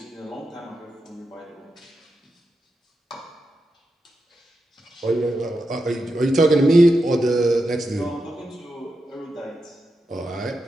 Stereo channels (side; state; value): both; normal; correlation 0.88